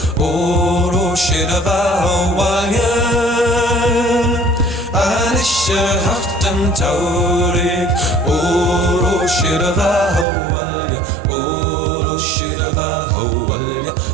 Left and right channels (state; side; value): drops out; left; at 10.2 s